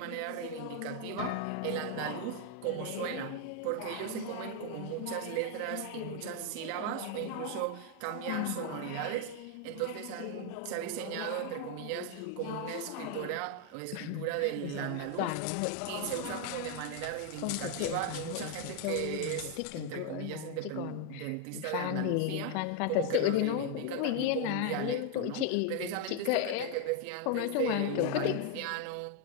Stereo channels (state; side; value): different; both; correlation 0.01